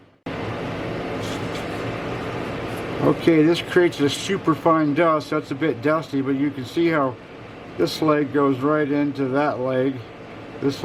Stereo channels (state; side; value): identical; both; correlation 1.00